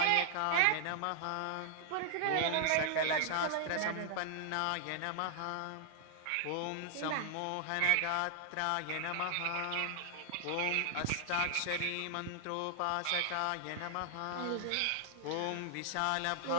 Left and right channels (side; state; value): both; different; correlation 0.00